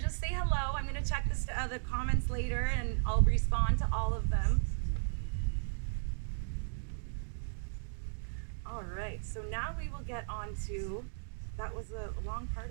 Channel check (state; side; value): silent; left; digital silence